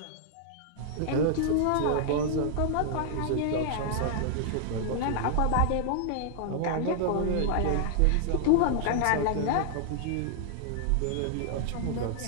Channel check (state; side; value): different; both; correlation -0.01